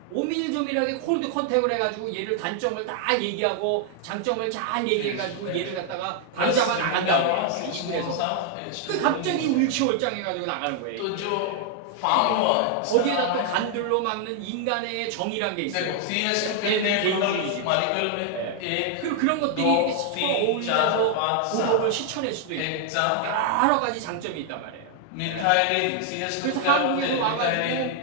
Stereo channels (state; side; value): different; both; correlation 0.00